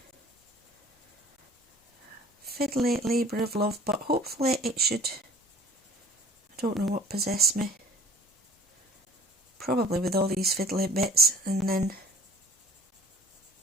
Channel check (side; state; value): both; normal; correlation 0.48